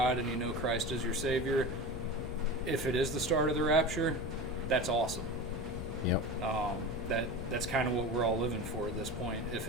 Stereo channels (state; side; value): noise; left; rumble, 8 dB below the sound